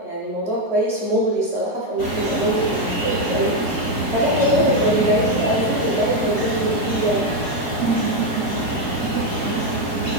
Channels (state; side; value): late; right; 4.3 ms